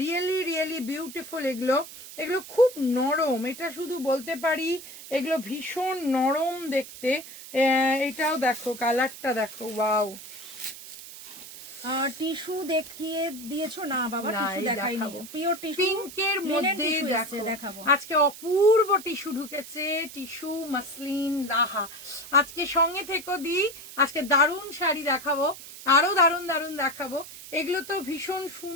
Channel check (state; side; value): noise; right; hiss, 14 dB below the sound